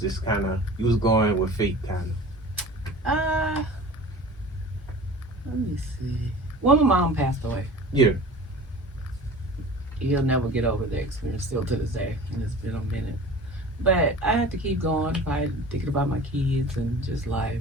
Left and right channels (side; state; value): both; normal; correlation 0.40